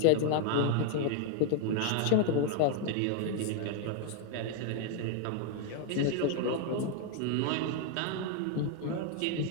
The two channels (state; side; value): different; both; correlation 0.00